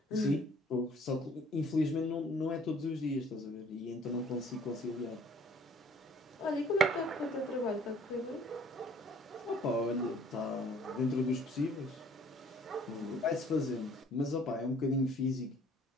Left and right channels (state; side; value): normal; both; correlation 0.56